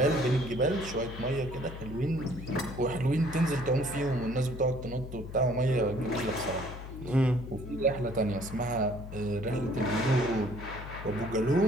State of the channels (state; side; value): noise; left; hum, 11 dB below the sound